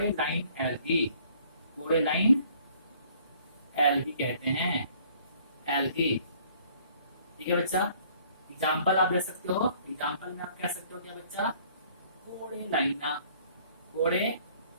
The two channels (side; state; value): both; inverted; correlation -0.58